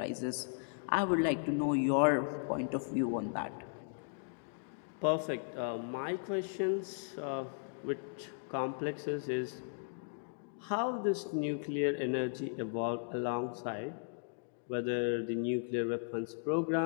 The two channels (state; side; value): silent; right; digital silence